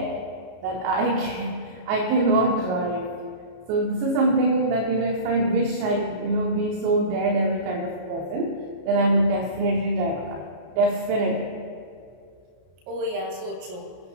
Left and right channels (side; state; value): left; late; 33 ms